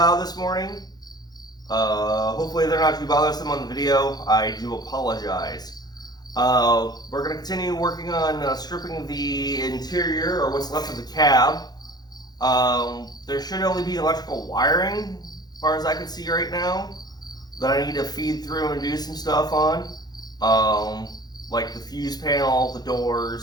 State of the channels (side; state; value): right; late; 0.19 ms